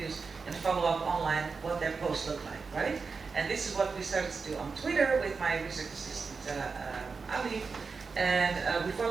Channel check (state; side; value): quieter; left; 4.8 dB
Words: and follow up online what their posts look like, right? And this is what we started to do on Twitter with my research assistant, Ali. And we